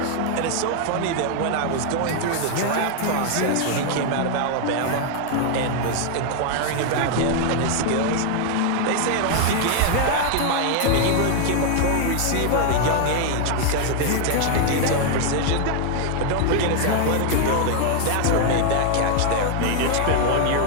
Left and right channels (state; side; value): different; both; correlation 0.00